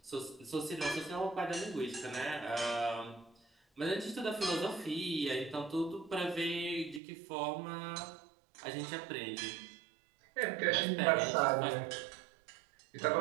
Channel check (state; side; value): drops out; left; at 7.0 s